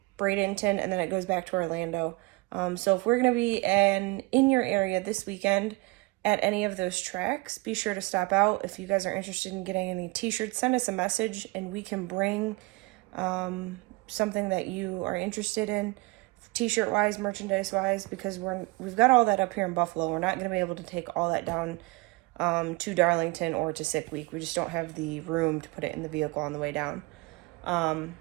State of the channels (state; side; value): quieter; left; 25.1 dB